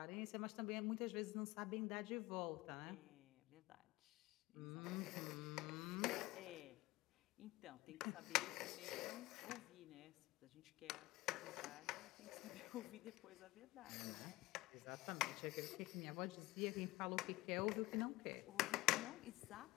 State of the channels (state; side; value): quieter; right; 19.5 dB